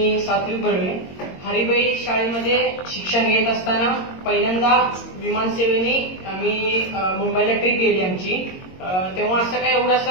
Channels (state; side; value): late; right; 22 ms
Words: सात्विक बर्वे. हरिबाई शाळेमध्ये शिक्षण घेत असताना पहिल्यांदा विमानसेवेने आम्ही मुंबईला ट्रिप गेली आमची. तेव्हा असं काय एवढं